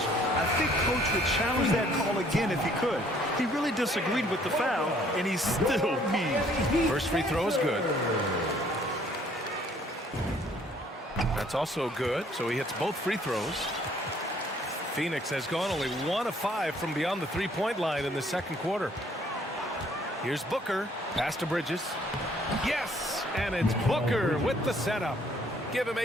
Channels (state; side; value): normal; both; correlation 0.62